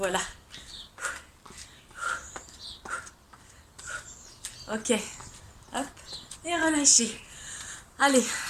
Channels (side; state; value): both; identical; correlation 1.00